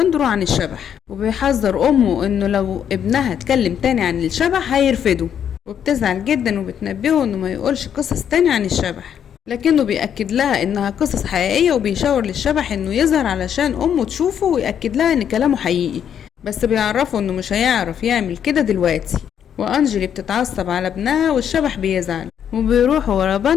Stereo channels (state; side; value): quieter; right; 8.8 dB